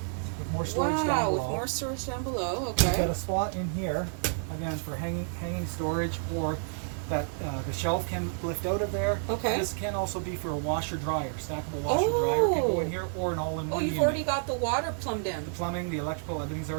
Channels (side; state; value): left; silent; digital silence